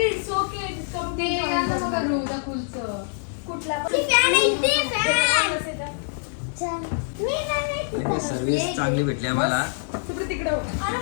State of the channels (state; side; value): silent; right; digital silence